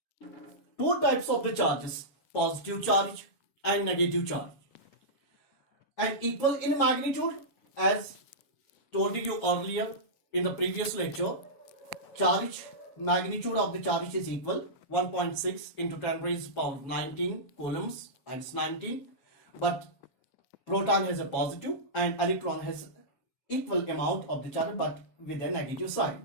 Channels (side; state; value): right; late; 7.3 ms